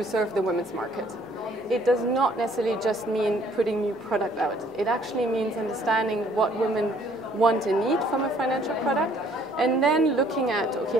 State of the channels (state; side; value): normal; both; correlation 0.60